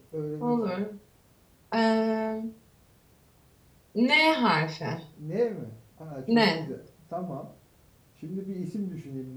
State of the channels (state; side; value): identical; both; correlation 1.00